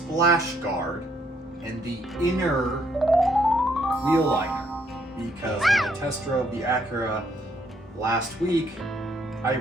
guard and the inner wheel liner, because when I test drove the Acura last week, I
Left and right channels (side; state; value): both; normal; correlation 0.70